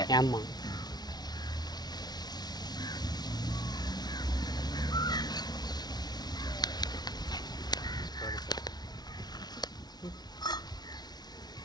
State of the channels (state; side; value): late; right; 0.19 ms